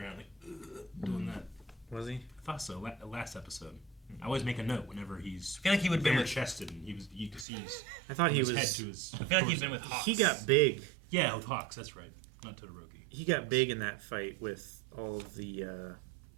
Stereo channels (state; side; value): drops out; left; at 7.5 s